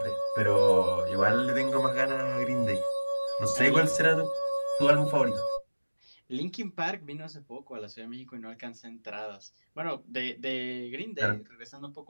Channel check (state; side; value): inverted; both; correlation -1.00